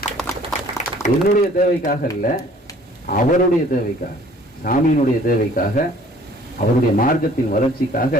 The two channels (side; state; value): both; normal; correlation 0.54